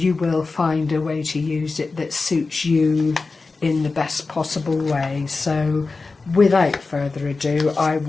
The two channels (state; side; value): quieter; right; 3.9 dB